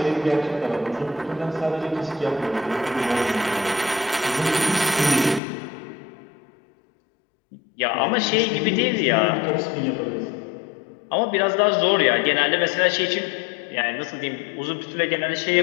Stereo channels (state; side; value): drops out; right; at 5.4 s